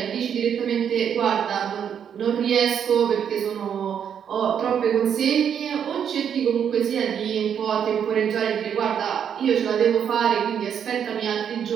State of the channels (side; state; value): left; quieter; 8.3 dB